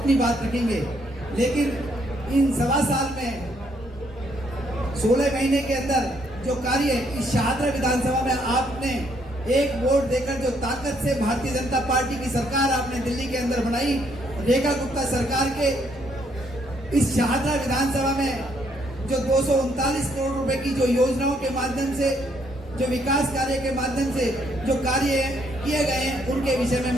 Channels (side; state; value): both; normal; correlation 0.70